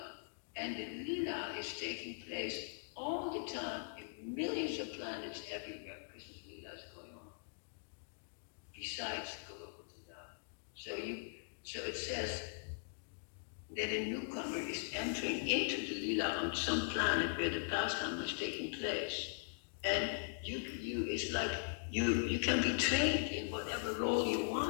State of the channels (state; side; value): silent; right; digital silence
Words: and the lila is taking place all the time in millions of planets everywhere. Krishna's lila is going on. Besides Golokotala. So it says that a newcomer is entering into the lila on some planet where the pastime is taking place. And it's like you can be trained in whatever role you